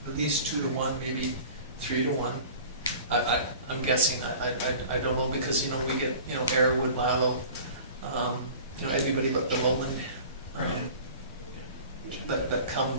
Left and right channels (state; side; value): inverted; both; correlation -0.42